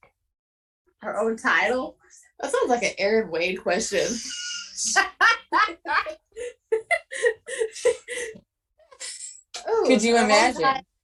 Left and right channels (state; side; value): identical; both; correlation 1.00